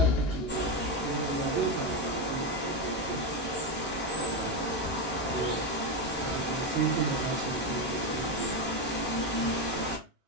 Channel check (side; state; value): both; normal; correlation 0.11